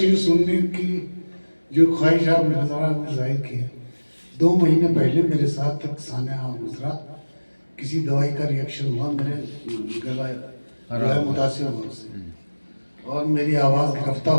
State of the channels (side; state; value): both; inverted; correlation -1.00